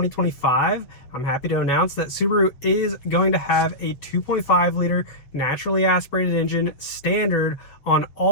I'm happy to announce that Subaru is going to have a 2.5 liter naturally aspirated engine standard on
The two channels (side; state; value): right; late; 7.5 ms